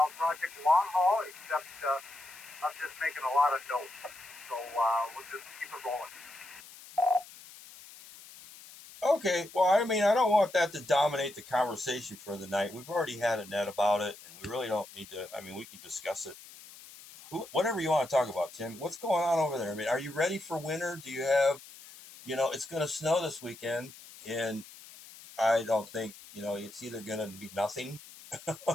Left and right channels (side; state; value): left; noise; hiss, 18 dB below the sound